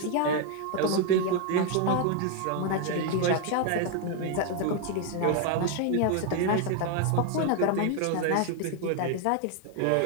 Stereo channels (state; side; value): different; both; correlation 0.01